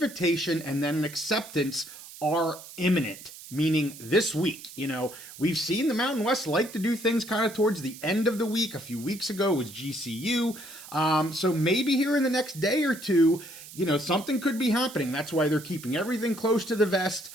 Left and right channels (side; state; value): right; noise; hiss, 16 dB below the sound